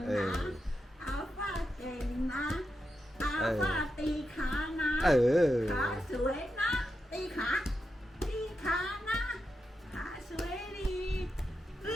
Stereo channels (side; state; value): both; normal; correlation 0.87